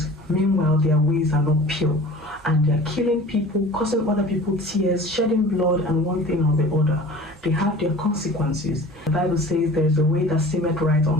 meanwhile their ways are not pure, and they're killing people, causing other people tears, shedding blood, and one thing or the other. They have their consequences. The Bible says there is a way that seemeth right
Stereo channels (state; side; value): normal; both; correlation 0.42